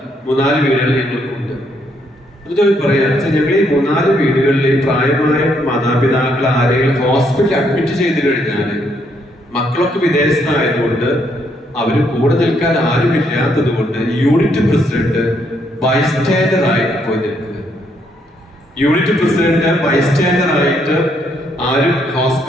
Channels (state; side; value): normal; both; correlation 0.73